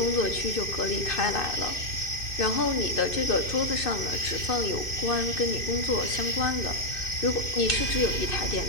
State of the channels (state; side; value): late; right; 2.6 ms